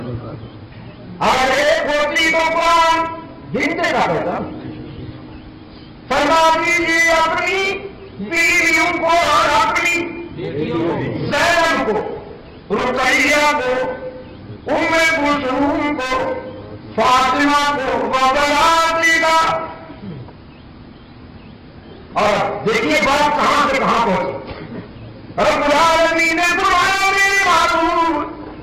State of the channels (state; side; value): identical; both; correlation 1.00